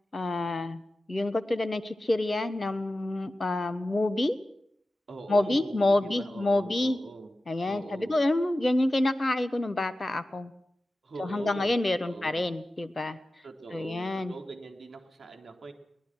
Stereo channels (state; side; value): normal; both; correlation 0.94